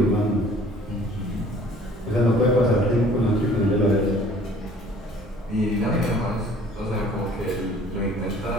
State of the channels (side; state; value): both; normal; correlation 0.52